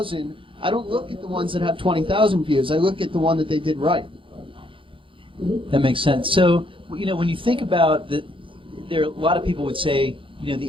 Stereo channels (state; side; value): late; left; 0.25 ms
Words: I don't look at the ones that have 20,000 views, I look at the one that they did right. That makes sense. So, when you think about there are a lot of people would say,